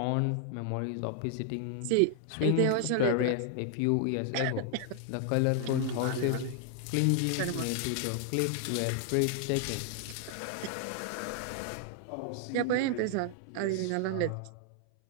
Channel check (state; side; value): different; both; correlation 0.00